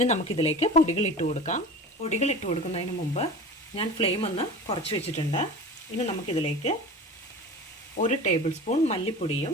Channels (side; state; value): both; normal; correlation 0.35